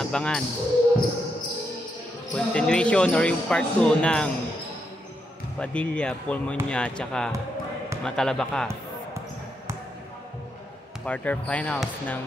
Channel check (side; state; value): both; normal; correlation 0.81